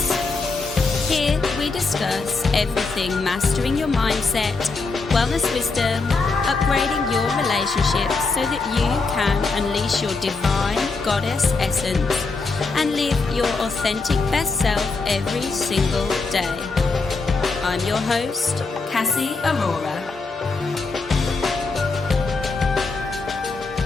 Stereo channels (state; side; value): quieter; right; 4.0 dB